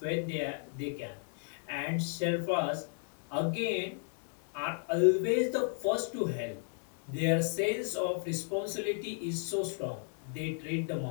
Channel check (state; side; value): silent; right; 55 dB below the other